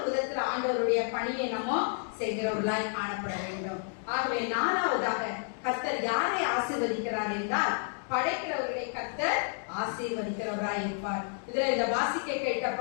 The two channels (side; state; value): right; silent; 57 dB below the other